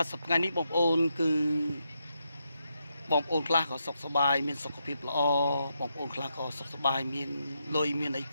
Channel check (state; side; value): inverted; both; correlation -0.82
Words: ទសប្តាហ៍នេះបងប្អូនគឺបងប្អូនខ្លះក៏សុខសប្បាយមានសុខភាពល្អបងប្អូនខ្លះក៏សុខសប្បាយមានលុយមានអី